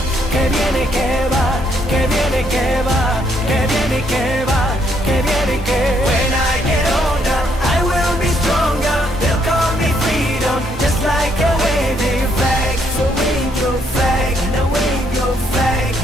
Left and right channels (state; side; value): normal; both; correlation 0.71